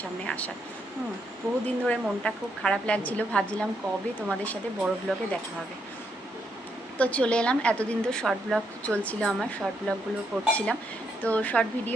সামনে আসার। বহুদিন ধরে মনটা খুব খারাপ লাগছিল, ভাবছিলাম কবে তোমাদের সাথে বড় ব্লগে দেখা হবে। তো চলে এলাম। এতদিন তো শর্ট ব্লগ চলছিল, আমার শর্ট ব্লগগুলো করছিলাম। তো শর্ট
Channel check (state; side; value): normal; both; correlation 0.77